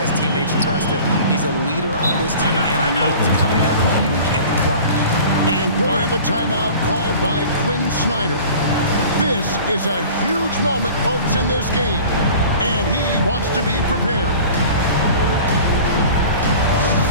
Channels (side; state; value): both; inverted; correlation -0.42